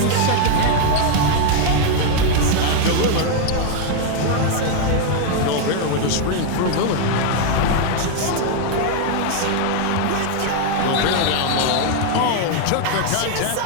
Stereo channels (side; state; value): both; different; correlation 0.00